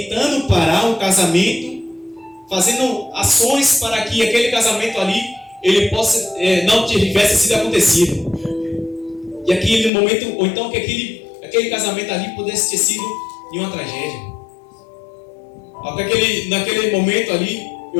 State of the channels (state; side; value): drops out; right; at 9.9 s